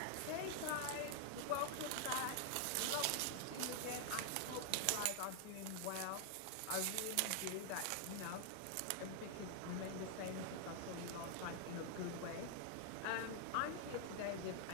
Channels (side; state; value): both; different; correlation 0.00